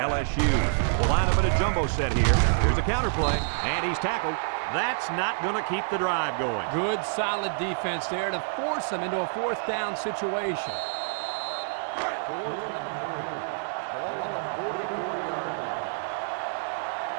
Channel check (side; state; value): left; silent; digital silence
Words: will line up in a jumbo set here. Here's a counter play, and he's tackled. That's not going to keep the drive going. Good, solid defense there to force them into a 4th down situation.